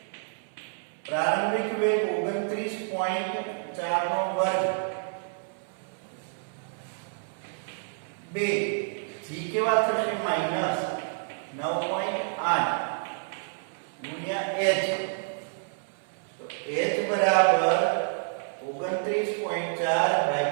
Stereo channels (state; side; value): silent; left; 59 dB below the other